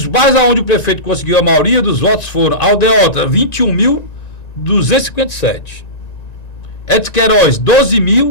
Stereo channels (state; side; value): late; right; 1.9 ms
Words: bairros onde o prefeito conseguiu a maioria dos votos foram Aldeota, 21.257. Edson Queiroz,